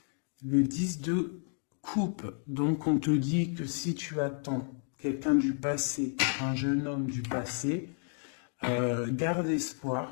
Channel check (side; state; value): right; silent; 57 dB below the other